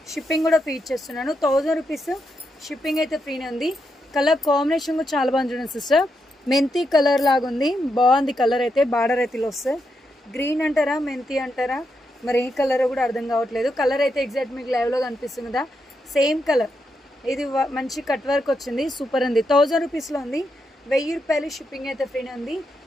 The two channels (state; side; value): normal; both; correlation 0.83